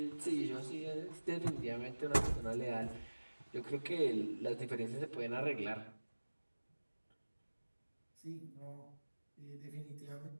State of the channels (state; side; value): inverted; both; correlation -1.00